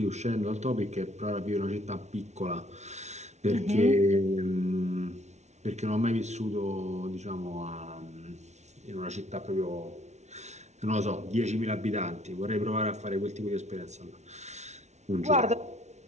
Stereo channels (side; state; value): left; late; 0.32 ms